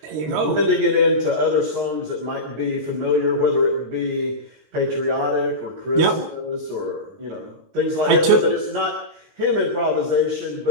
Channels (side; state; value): left; late; 19 ms